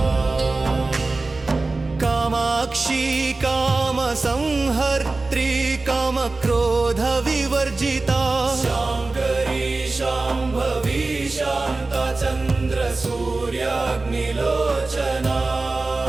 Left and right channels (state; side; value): quieter; left; 3.4 dB